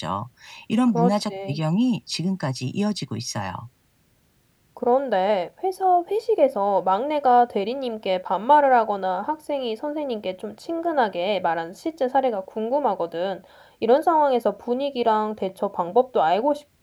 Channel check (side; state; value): both; identical; correlation 1.00